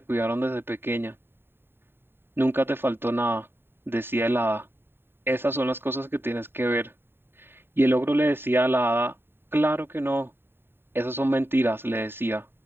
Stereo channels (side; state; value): left; late; 0.11 ms